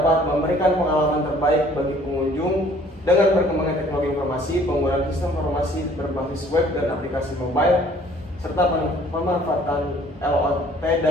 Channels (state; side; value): normal; both; correlation 0.56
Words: memberikan pengalaman terbaik bagi pengunjung. Dengan perkembangan teknologi informasi, penggunaan sistem informasi berbasis web dan aplikasi mobile, serta pemanfaatan IoT